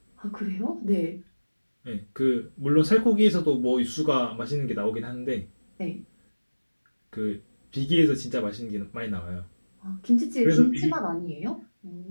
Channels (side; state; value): both; inverted; correlation -1.00